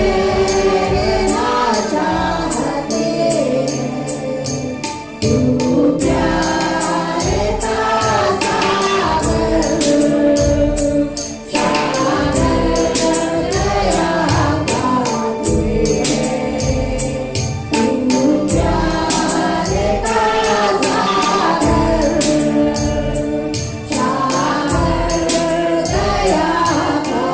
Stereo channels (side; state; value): both; identical; correlation 1.00